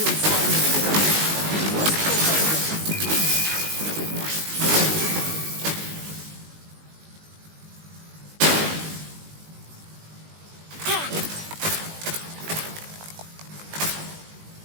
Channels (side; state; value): left; late; 19 ms